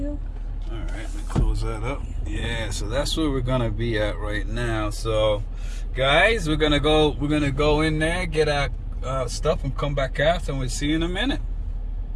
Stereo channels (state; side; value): identical; both; correlation 1.00